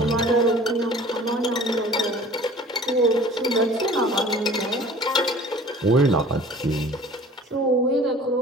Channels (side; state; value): both; normal; correlation 0.46